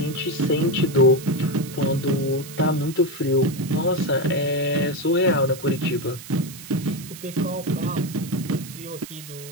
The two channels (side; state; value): right; noise; hiss, 15 dB below the sound